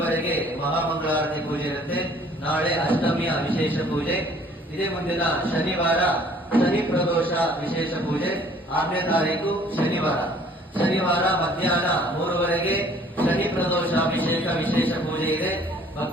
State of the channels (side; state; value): both; normal; correlation 0.56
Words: ಮಹಾಮಂಗಳಾರತಿ ಪೂಜೆ ಇರುತ್ತೆ. ನಾಳೆ ಅಷ್ಟಮಿಯ ವಿಶೇಷ ಪೂಜೆ. ಇದೇ ಮುಂದಿನ ಶನಿವಾರ ಶನಿ ಪ್ರದೋಷ ವಿಶೇಷ ಪೂಜೆ, 6ನೇ ತಾರೀಕು ಶನಿವಾರ ಮಧ್ಯಾಹ್ನ 3 ಶನಿ ಪ್ರದೋಷ ಅಭಿಷೇಕ ವಿಶೇಷ ಪೂಜೆ ಇದೆ.